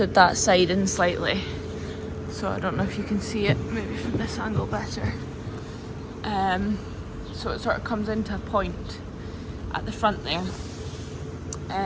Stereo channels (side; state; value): both; identical; correlation 1.00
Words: that side in slightly. So I don't know if you can see it, maybe from this angle better. So it sort of comes into a point at the front there.